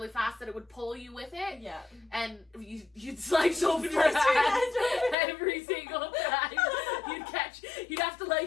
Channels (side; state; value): right; drops out; at 5.2 s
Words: fast that it would pull you with it. Yeah. And you'd slice open your hands every single time. You'd have to